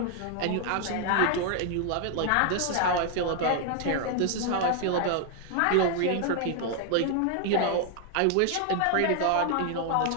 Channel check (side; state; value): both; different; correlation 0.00